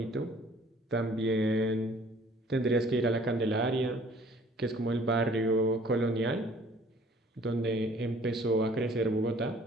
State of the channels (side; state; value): both; normal; correlation 0.55